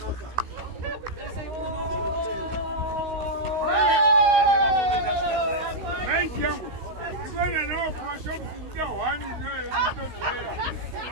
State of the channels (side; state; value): left; late; 16 ms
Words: Maiti yangu. Ndivena nawo pamashopisi ndida hwani notonhera.